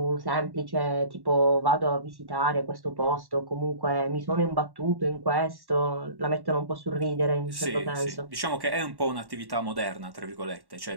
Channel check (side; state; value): left; late; 1.1 ms